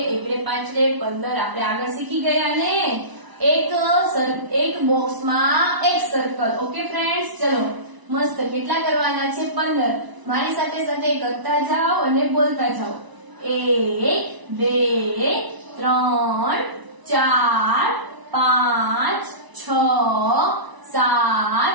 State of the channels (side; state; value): left; late; 1.0 ms